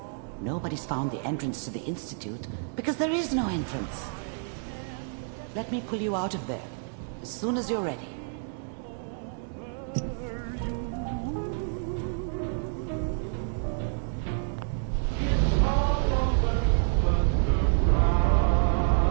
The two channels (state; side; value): silent; left; 59 dB below the other